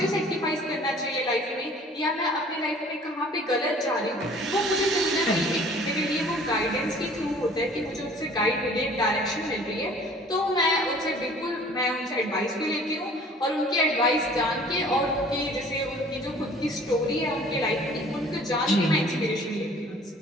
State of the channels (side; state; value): both; normal; correlation 0.51